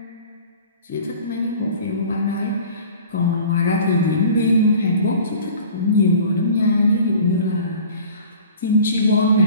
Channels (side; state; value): both; inverted; correlation -0.43